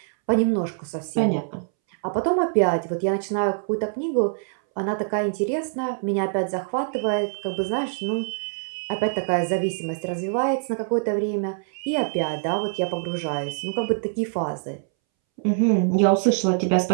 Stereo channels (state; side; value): silent; left; 62 dB below the other